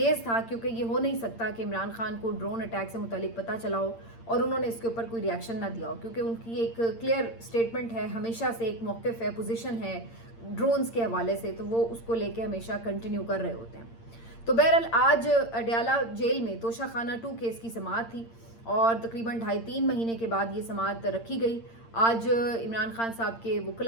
تھا کیونکہ یہ ہو نہیں سکتا کہ عمران خان کو ڈرون اٹیک سے متعلق پتہ چلا ہو اور انہوں نے اس کے اوپر کوئی ریاکشن نہ دیا ہو، کیونکہ ان کی ایک کلیئر سٹیٹمنٹ ہے، ہمیشہ سے ایک موقف ہے، پوزیشن ہے ڈرونز کے حوالے سے، تو وہ اس کو لے کے ہمیشہ کنٹینیو کر رہے ہوتے ہیں. تو بہرحال آج اڈیالہ جیل میں توشہ خانہ 2 کیس کی سماعت تھی اور تقریباً 2.5-3 مہینے کے بعد یہ سماعت رکھی گئی. آج عمران خان صاحب کے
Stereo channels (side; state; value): right; late; 8.7 ms